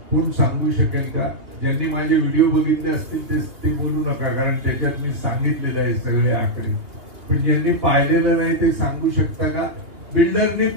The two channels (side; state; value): left; late; 2.7 ms